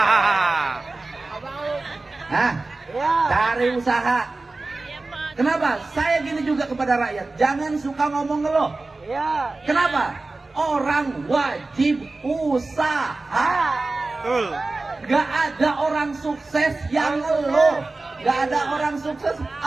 Hah? Iya. Cari usaha. Kenapa? Saya gini juga kepada rakyat, jangan suka ngomong ngeluh. Iya. Kenapa? Orang wajib usaha. Betul. Gak ada orang sukses yang ngeluh. Gak ada orang sukses,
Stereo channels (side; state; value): left; quieter; 3.3 dB